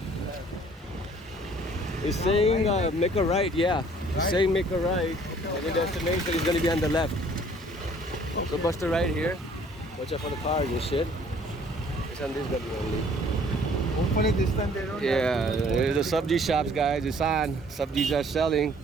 He's saying make a right, yeah. He's saying make a right. And the destination is going to be on the left. So bust a right here. Watch out for the cars and shit. It's on this gully only. Hopefully this time they don't. Yeah, there's the sabji shops, guys. It's on. Sabjis are selling.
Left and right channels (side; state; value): both; normal; correlation 0.57